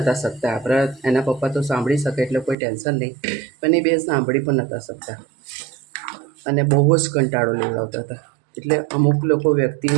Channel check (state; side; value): drops out; left; at 2.6 s